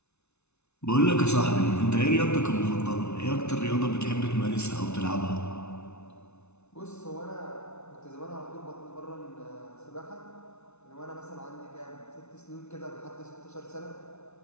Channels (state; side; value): late; right; 0.81 ms